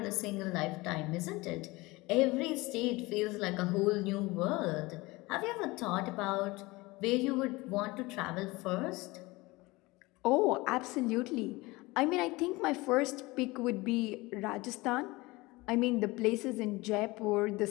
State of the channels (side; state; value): right; quieter; 22.1 dB